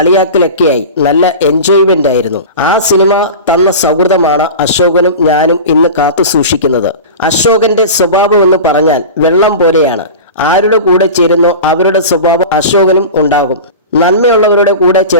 നല്ല എൻജോയ്മെന്റ് ആയിരുന്നു. ആ സിനിമ തന്ന സൗഹൃദമാണ് അശോകനും ഞാനും ഇന്ന് കാത്തു സൂക്ഷിക്കുന്നത്. അശോകന്റെ സ്വഭാവം എന്ന് പറഞ്ഞാൽ വെള്ളം പോലെയാണ്. ആരുടെ കൂടെ ചേരുന്നോ അവരുടെ സ്വഭാവം അശോകനും ഉണ്ടാകും. നന്മയുള്ളവരുടെ കൂടെ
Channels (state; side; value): inverted; both; correlation -0.31